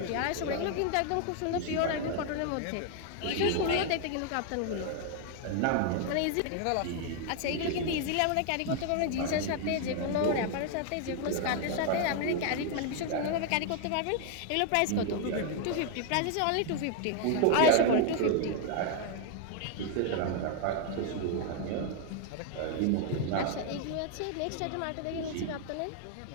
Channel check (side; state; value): both; different; correlation 0.00